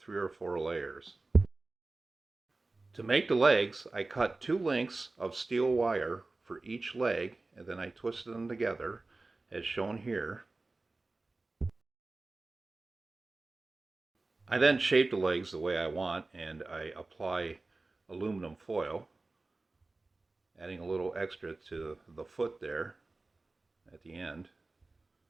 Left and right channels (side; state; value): left; quieter; 3.3 dB